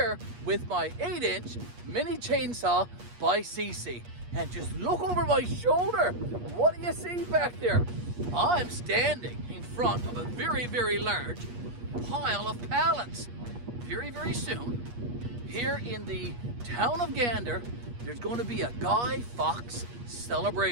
with my 8-inch mini chainsaw by Seesii, and just look over my shoulder. What do you see back there? I'm standing in front of a very large pile of pallets. Very soon, here in the town of Gander, there's going to be a Guy Fawkes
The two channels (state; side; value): late; left; 8.4 ms